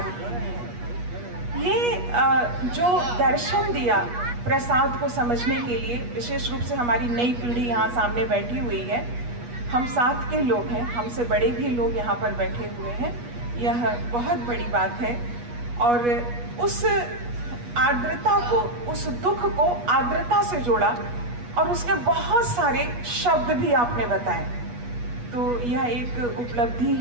है। ये जो दर्शन दिया प्रसाद को समझने के लिए, विशेष रूप से हमारी नई पीढ़ी यहाँ सामने बैठी हुई है, हम साथ के लोग हैं, हमसे बड़े भी लोग यहाँ पर बैठे हुए हैं, यह बहुत बड़ी बात है। और उस आर्द्रता को, उस दुख को आर्द्रता से जोड़ा और उसके बहुत सारे शब्द भी आपने बताए। तो यह एक उपलब्धि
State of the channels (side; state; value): left; late; 8.3 ms